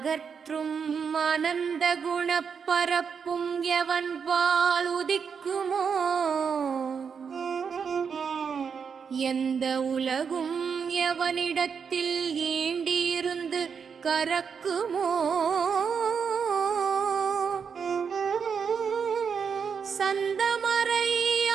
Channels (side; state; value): left; quieter; 6.4 dB